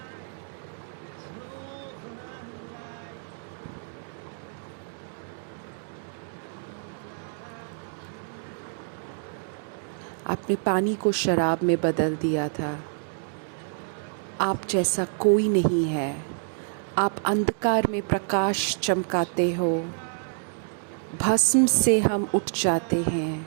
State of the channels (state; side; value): silent; left; digital silence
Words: आपने पानी को शराब में बदल दिया था। आप जैसा कोई नहीं है। आप अंधकार में प्रकाश चमकाते हो। भस्म से हम उठ जाते हैं।